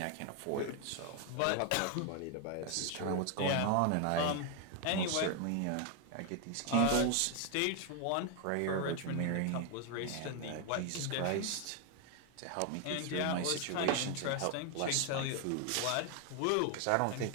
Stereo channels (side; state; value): both; different; correlation 0.01